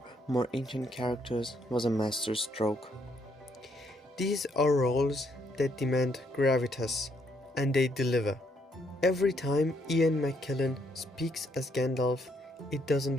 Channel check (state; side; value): normal; both; correlation 0.72